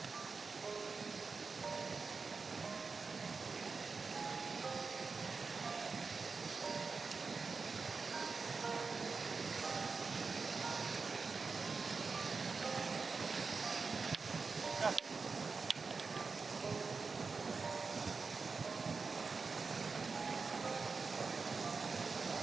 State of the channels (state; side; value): quieter; left; 4.6 dB